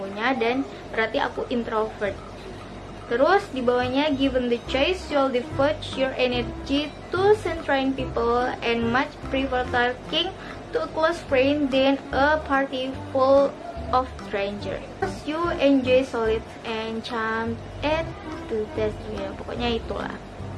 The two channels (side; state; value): both; identical; correlation 1.00